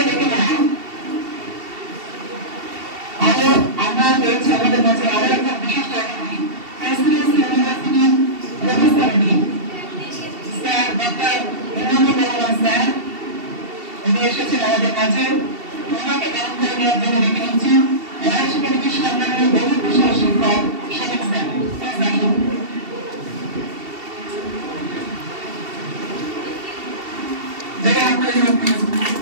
দেখে নেব আমরা পেয়েছি আমাদের কাছে আরো একটা বিশিষ্ট অতিথি, প্রেসিডেন্সি ইউনিভার্সিটির professor sir doctor Imamur Rahman sir. উনি এসেছেন আমাদের কাছে, ওনাকে গ্রহণ করে নেওয়ার জন্য ডেকে নিচ্ছি ওয়াইশ একাডেমির সম্মানীয় বহু বিশাল শিক্ষক শফিক স্যার, প্লিজ আসুন।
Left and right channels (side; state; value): left; late; 2.7 ms